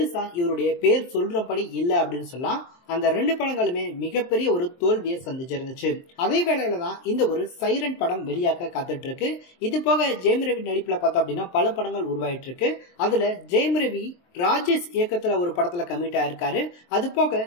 இவருடைய பேர் சொல்றபடி இல்ல அப்படின்னு சொல்லலாம். அந்த 2 படங்களுமே மிகப்பெரிய ஒரு தோல்வியை சந்திச்சிருந்துச்சு. அதே வேளையில தான் இந்த ஒரு சைரன் படம் வெளியாக காத்துட்டு இருக்கு. இது போக ஜெயம் ரவி நடிப்புல பார்த்தோம் அப்படின்னா பல படங்கள் உருவாயிட்டு இருக்கு. அதுல ஜெயம் ரவி ராஜேஷ் இயக்கத்துல ஒரு படத்துல கமிட் ஆயிருக்காரு. அது போக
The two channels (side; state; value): right; late; 23 ms